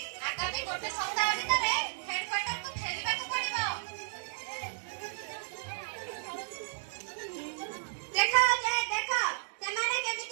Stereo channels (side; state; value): left; silent; digital silence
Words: ଆଗାମୀ ଗୋଟେ ସପ୍ତାହ ଭିତରେ ହେଡକ୍ୱାର୍ଟରକୁ ଫେରିବାକୁ ପଡ଼ିବ ଦେଖ ଯେ ଦେଖ ସେମାନେ